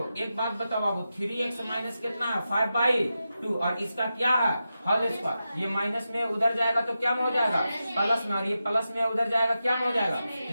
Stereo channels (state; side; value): inverted; both; correlation -0.90